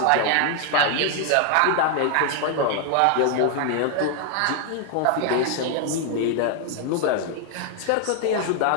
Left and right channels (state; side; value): different; both; correlation 0.00